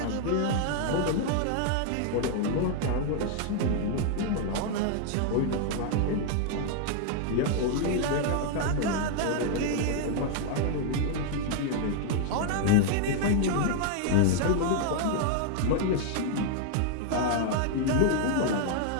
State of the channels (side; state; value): both; different; correlation 0.00